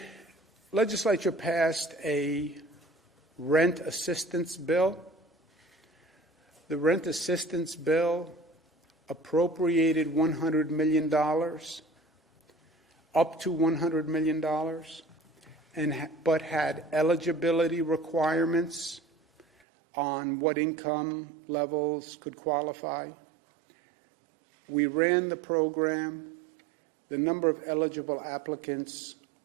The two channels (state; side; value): drops out; left; at 19.5 s